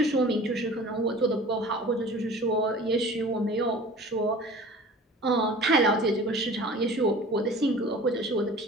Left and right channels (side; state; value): both; normal; correlation 0.43